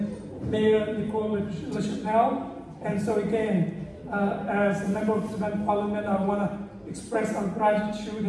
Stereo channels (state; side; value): identical; both; correlation 1.00